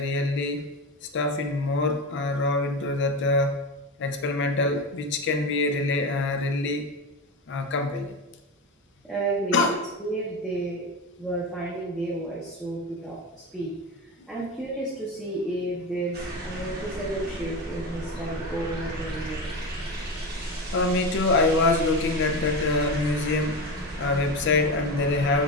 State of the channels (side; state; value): both; normal; correlation 0.21